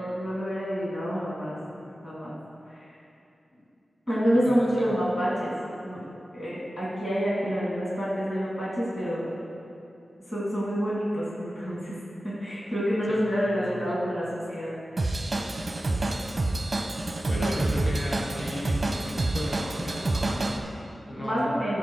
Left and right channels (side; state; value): both; normal; correlation 0.94